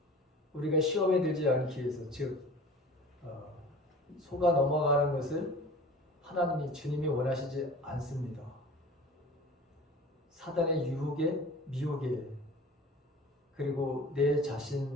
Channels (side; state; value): both; normal; correlation 0.41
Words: 우리가 시험에 들지 않기 위해서, 즉 속아 넘어가는 것을 주님이 원하시지 않습니다. 사단의 유혹에, 미혹에, 그리고 내